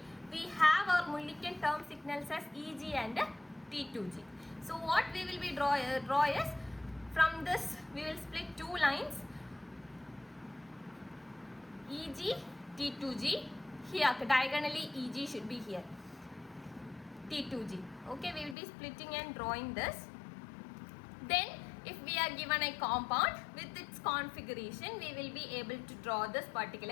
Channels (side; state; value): right; drops out; at 18.6 s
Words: we have our Mulliken term signals as EG and T2G. So what we will be draw is, from this we will split two lines, EG, T2G. Here diagonally EG should be here, T2G. Okay, we will be splitting and drawing this. Then if we are given a compound with its configuration, we will be able to draw this